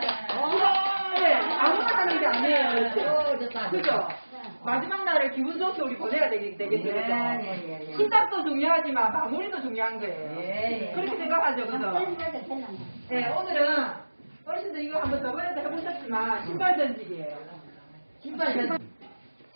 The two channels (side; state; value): both; inverted; correlation -1.00